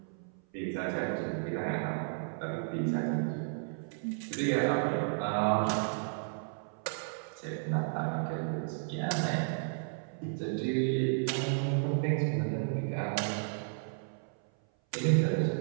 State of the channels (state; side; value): silent; left; 56 dB below the other